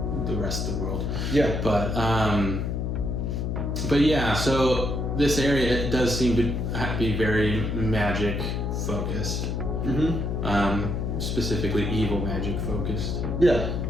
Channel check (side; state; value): left; noise; hum, 1 dB below the sound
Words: the rest of the world. Yeah. But yeah, so this area does seem to be very magic focused. Mm-hmm. Specifically evil magic focused. Yeah.